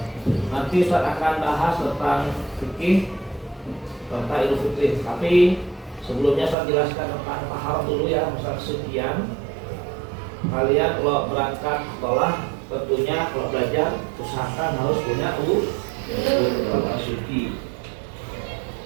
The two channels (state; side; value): drops out; left; at 6.6 s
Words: nanti Ustaz akan bahas tentang fikih serta Idul Fitri. Tapi sebelumnya saya jelaskan tentang taharah dulu ya, masalah kesucian. Kalian kalau berangkat sekolah tentunya kalau belajar usahakan harus punya suci.